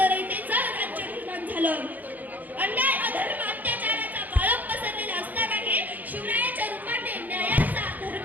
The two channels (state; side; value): late; left; 0.082 ms